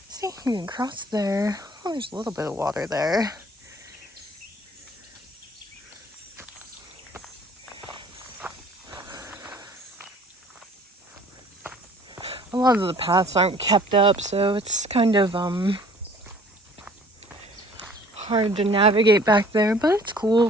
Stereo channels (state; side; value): normal; both; correlation 0.53